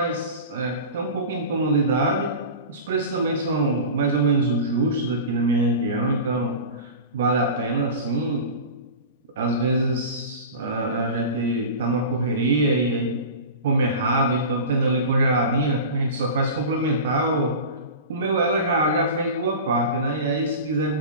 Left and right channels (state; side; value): inverted; both; correlation -0.32